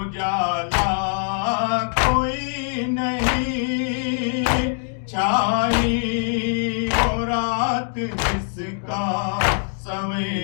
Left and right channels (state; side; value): silent; right; digital silence